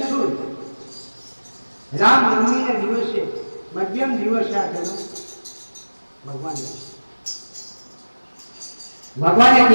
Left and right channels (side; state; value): both; inverted; correlation -1.00